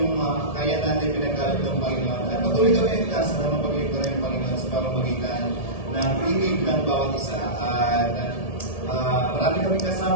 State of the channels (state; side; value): late; right; 1.7 ms